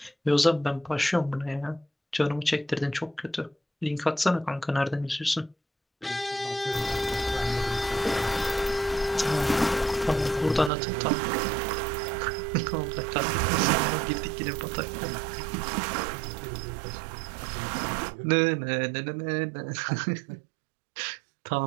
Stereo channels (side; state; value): left; drops out; at 10.7 s